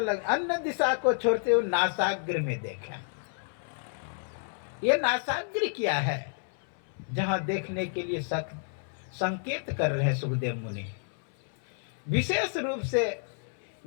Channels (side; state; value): right; silent; 58 dB below the other